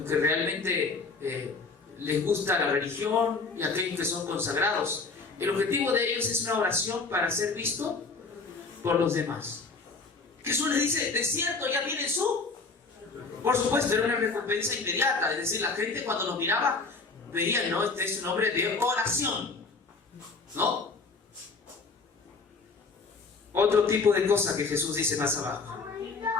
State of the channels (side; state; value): right; quieter; 4.2 dB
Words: que realmente les gusta la religión y aquellos que son consagrados. El objetivo de ellos es una oración para ser visto por los demás. Jesús les dice, de cierto ya tienen su... Por supuesto, era una recompensa inmediata. Es decir, la gente cuando los miraba veían, ¿no? Este es un hombre de oración. ¿no? Otro tipo de cosa que Jesús dice más abajo.